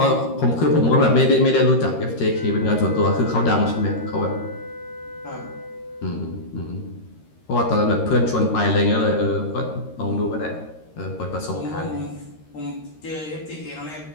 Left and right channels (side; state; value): right; late; 13 ms